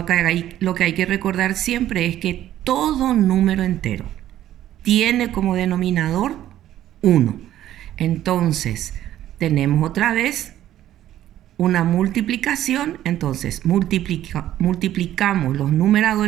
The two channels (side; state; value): left; quieter; 12.6 dB